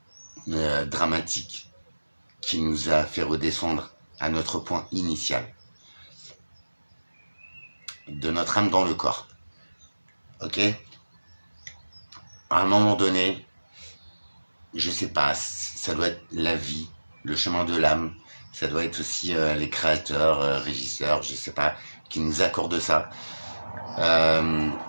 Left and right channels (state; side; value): inverted; both; correlation -1.00